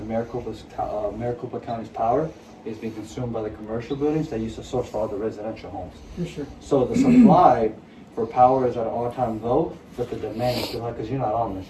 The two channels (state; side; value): identical; both; correlation 1.00